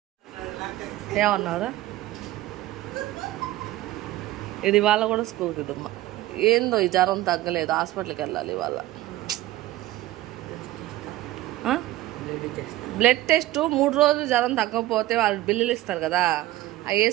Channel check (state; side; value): quieter; left; 16.2 dB